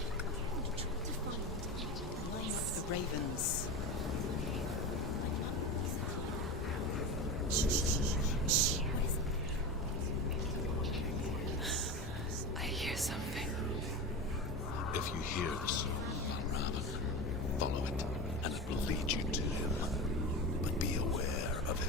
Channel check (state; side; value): normal; both; correlation 0.24